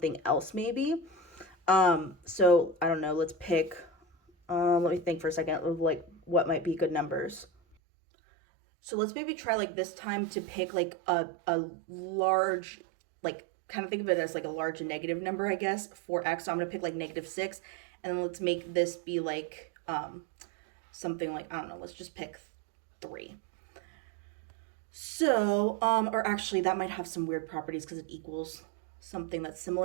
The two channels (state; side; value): drops out; left; at 7.8 s